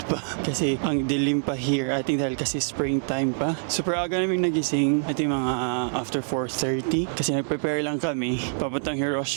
pa. Kasi ang dilim pa here. I think dahil kasi springtime pa. Super aga namin nagising. I think mga after 4:30. Kasi nag-prepare lang kami. Papuntang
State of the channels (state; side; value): silent; left; digital silence